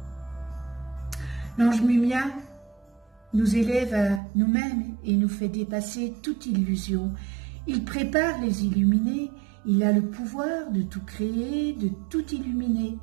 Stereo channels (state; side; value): drops out; left; at 4.2 s